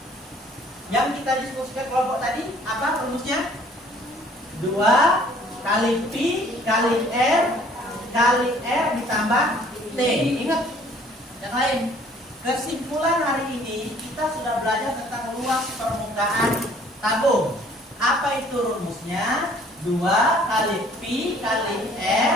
yang kita diskusikan kelompok tadi apa rumusnya? 2 kali P kali R ditambah T. Ingat yang lain, Kesimpulan hari ini kita sudah belajar tentang luas permukaan tabung. Apa itu rumusnya? 2 kali Pi kali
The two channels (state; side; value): normal; both; correlation 0.57